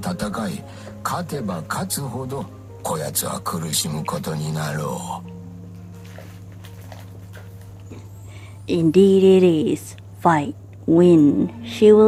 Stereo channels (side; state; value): both; identical; correlation 1.00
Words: い、勝てば勝つほどこやつは苦しむことになろう。Indeed it is. Fight. Win. She